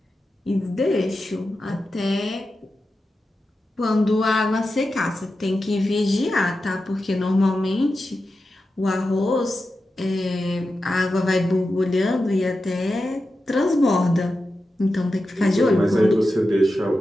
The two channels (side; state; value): both; normal; correlation 0.91